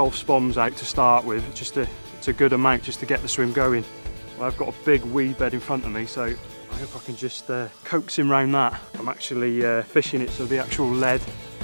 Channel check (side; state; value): both; inverted; correlation -1.00